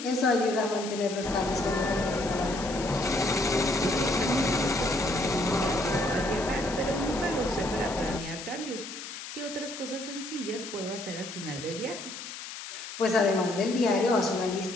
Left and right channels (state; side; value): noise; left; hiss, 10 dB below the sound